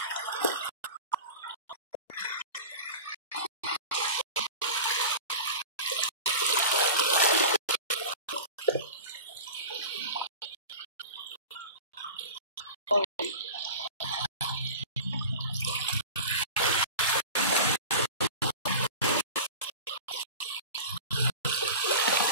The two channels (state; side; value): inverted; both; correlation -0.32